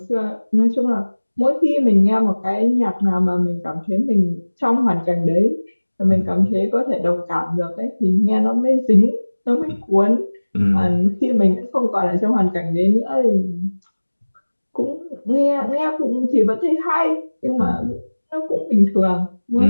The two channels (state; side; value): inverted; both; correlation -1.00